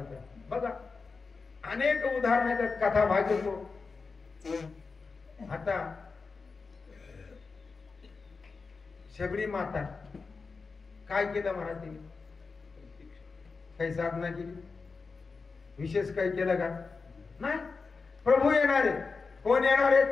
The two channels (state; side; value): quieter; right; 4.5 dB